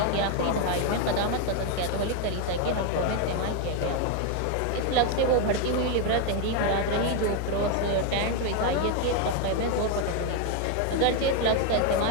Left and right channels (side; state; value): both; different; correlation 0.01